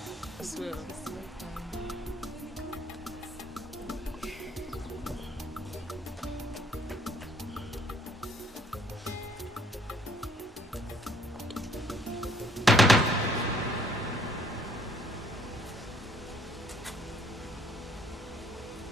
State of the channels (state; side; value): normal; both; correlation 0.61